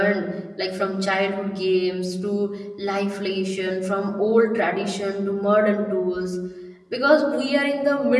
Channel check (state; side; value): identical; both; correlation 1.00